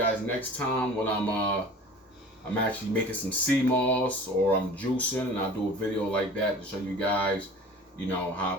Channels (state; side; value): normal; both; correlation 0.42